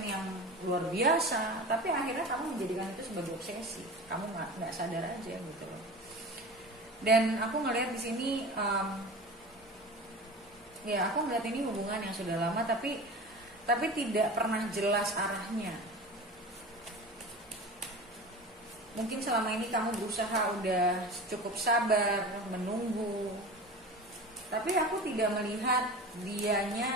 yang luar biasa, tapi akhirnya kamu menjadikan itu sebagai obsesi. Kamu nggak sadar aja gitu loh. Dan aku ngelihat di sini, ya aku ngelihat ini hubungan yang sudah lama, tapi tidak pernah jelas arahnya. Mungkin selama ini kamu berusaha udah cukup sabar, menunggu. Tapi aku tidak melihat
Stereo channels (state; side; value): normal; both; correlation 0.33